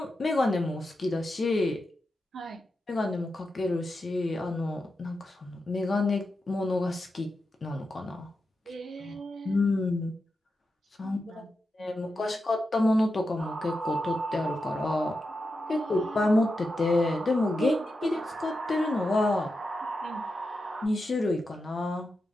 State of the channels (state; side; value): normal; both; correlation 0.89